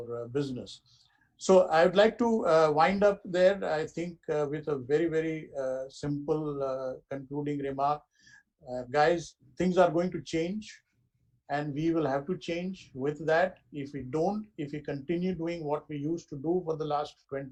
business. So I would like to wind up there, I think, with a very, very simple concluding remark. Guys, things are going to change, and we will have to change with that. If we continue doing what we used to do for the last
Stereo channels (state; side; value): identical; both; correlation 1.00